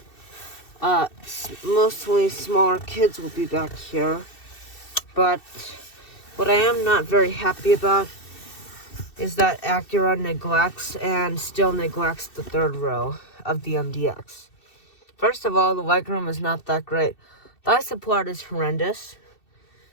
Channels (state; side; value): late; right; 2.7 ms